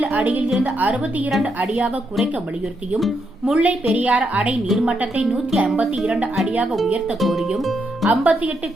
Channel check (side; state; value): both; normal; correlation 0.80